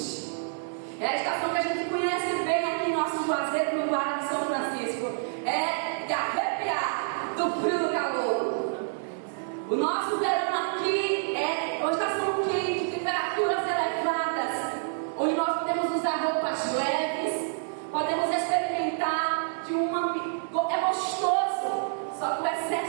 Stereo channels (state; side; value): silent; left; digital silence